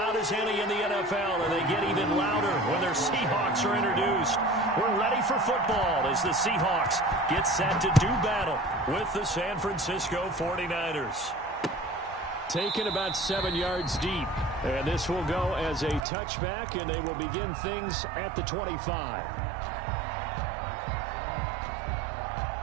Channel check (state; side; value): drops out; left; at 16.1 s